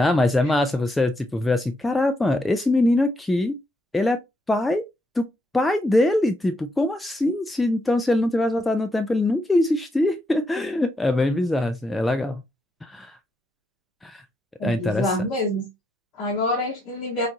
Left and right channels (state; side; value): normal; both; correlation 0.80